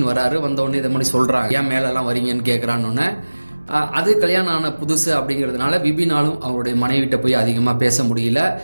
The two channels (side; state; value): both; inverted; correlation -1.00